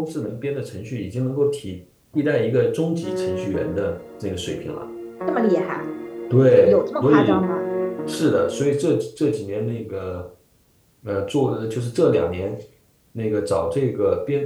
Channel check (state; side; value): identical; both; correlation 1.00